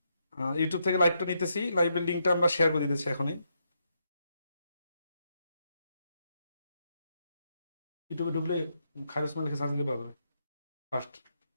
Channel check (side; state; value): both; inverted; correlation -0.80